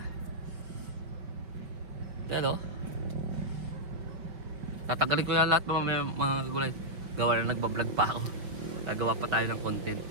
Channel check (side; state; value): left; late; 5.1 ms